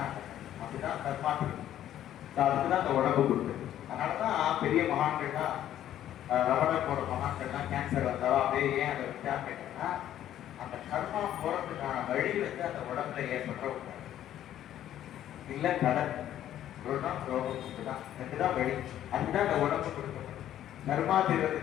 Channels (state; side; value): quieter; right; 11.7 dB